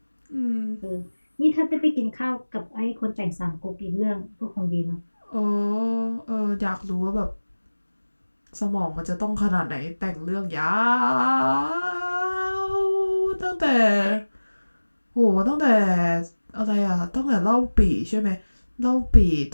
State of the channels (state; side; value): inverted; both; correlation -1.00